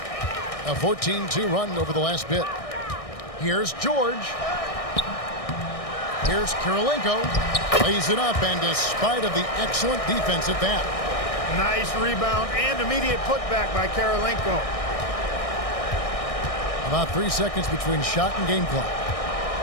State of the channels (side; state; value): right; late; 1.6 ms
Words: A 14-2 run over the last bit. Here's George. Here's Kirilenko. Lays it up, and despite of the excellent defense at that. Nice rebound and immediate putback by Kirilenko. About 3 seconds between shot and game clock.